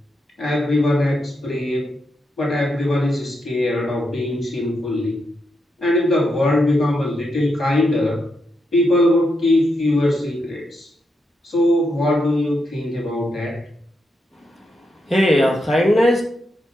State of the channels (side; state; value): both; normal; correlation 0.83